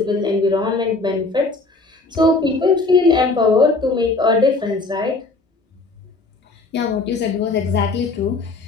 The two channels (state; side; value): quieter; right; 3.5 dB